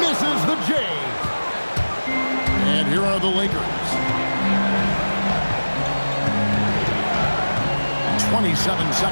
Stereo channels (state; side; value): inverted; both; correlation -1.00